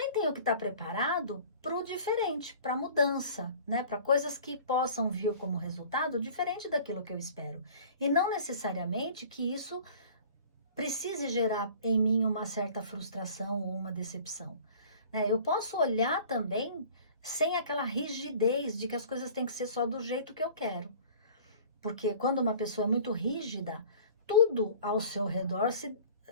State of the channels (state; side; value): inverted; both; correlation -0.46